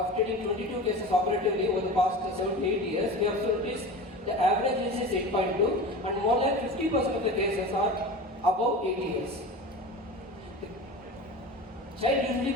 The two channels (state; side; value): normal; both; correlation 0.32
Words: treating 22 cases operatively over the past 7 to 8 years, we have noticed the average age is 8.2 and more than 50% of the cases are above 8 years. The child usually